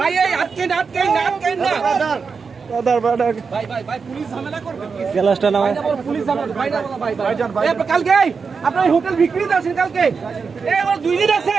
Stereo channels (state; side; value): quieter; left; 5.3 dB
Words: এই আটকেন আটকেন আটকেন না বাদার বাদার ভাই ভাই ভাই পুলিশ ঝামেলা করবে গ্লাসটা নামায় পুলিশ ঝামেলা ভাই না ভাই ভাই এই কালকে আপনার হোটেল বিক্রিতে আছেন কালকে এই আমার 2 দিন আছে